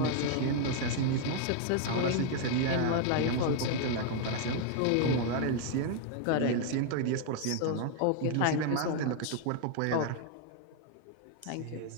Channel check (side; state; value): both; different; correlation 0.00